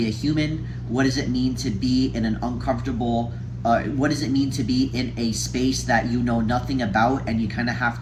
a human? What does it mean to be in an uncomfortable? What does it mean to be in a space that you know nothing about, and you kind of have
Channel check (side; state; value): both; identical; correlation 1.00